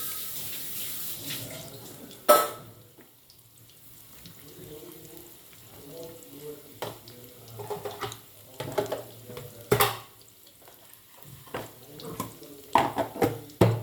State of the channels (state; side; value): identical; both; correlation 1.00